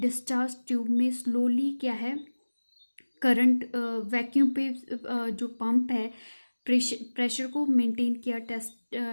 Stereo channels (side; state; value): both; inverted; correlation -1.00